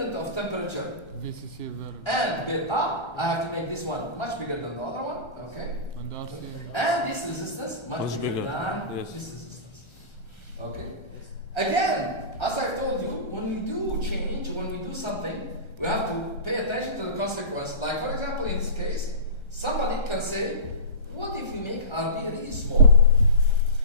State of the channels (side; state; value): right; late; 1.3 ms